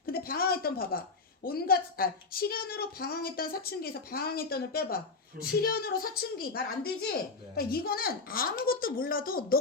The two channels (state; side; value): quieter; right; 4.1 dB